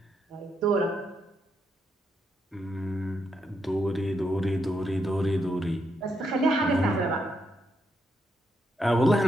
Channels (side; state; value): both; normal; correlation 0.80